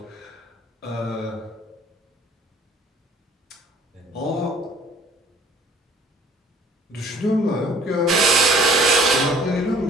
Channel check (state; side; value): normal; both; correlation 0.54